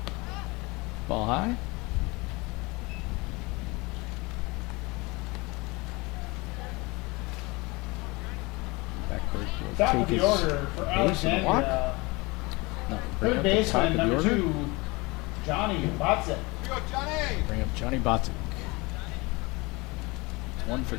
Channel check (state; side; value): quieter; right; 24.9 dB